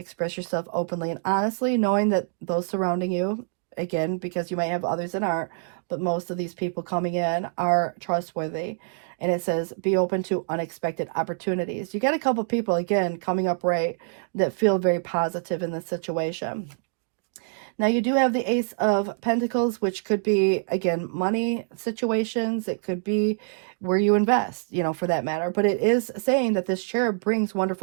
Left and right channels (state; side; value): silent; left; digital silence